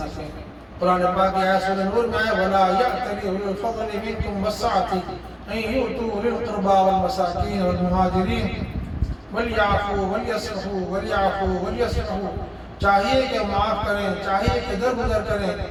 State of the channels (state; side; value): identical; both; correlation 1.00